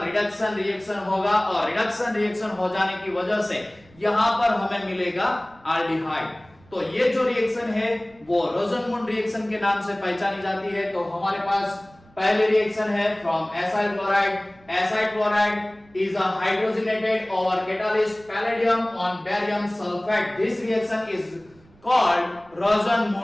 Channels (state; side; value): noise; right; rumble, 28 dB below the sound